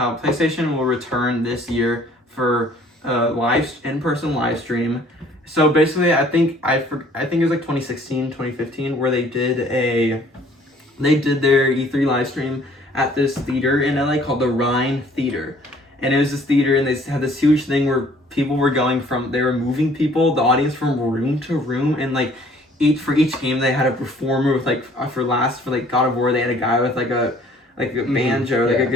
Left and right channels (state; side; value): normal; both; correlation 0.57